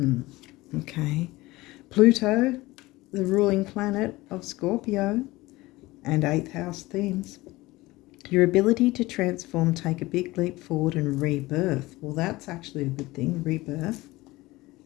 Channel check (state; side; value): quieter; right; 19.8 dB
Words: Okay. Pluto, the ruling planet of Scorpio, and 8th house themes. Your ability to transform, take a big leap forward and rebirth. Well, that's actually a good thing, rebirth.